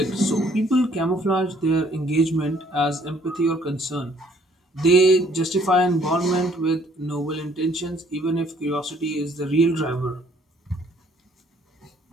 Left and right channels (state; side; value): normal; both; correlation 0.62